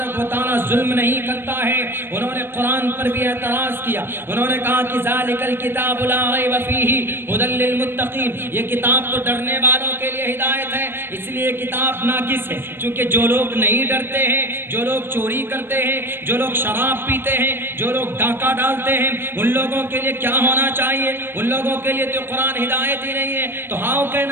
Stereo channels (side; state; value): left; late; 0.10 ms